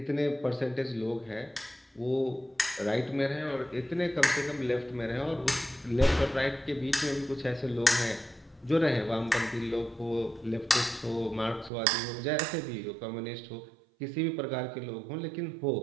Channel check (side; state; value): left; drops out; at 11.7 s